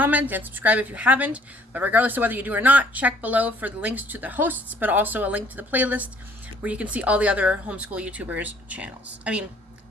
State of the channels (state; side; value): normal; both; correlation 0.60